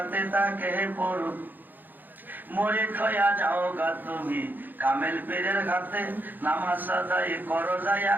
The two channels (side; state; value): left; late; 0.088 ms